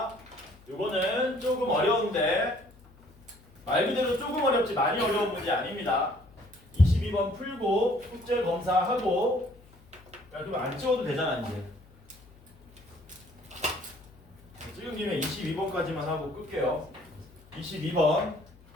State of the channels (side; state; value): left; noise; hum, 26 dB below the sound